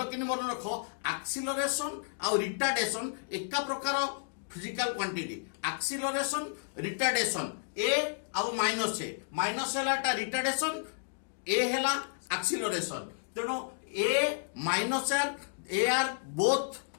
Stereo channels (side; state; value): right; silent; digital silence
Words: कि मन रख एक्सीलरेशन आ रिटार्डेशन एका प्रकार physical quantity acceleration retardation A आउ माइनस हैला रिटार्डेशन ए हैला एक्सीलरेशन तेणु A minus A are both